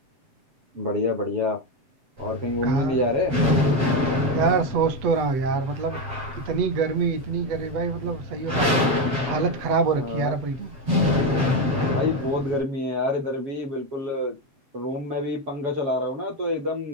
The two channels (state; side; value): late; left; 7.4 ms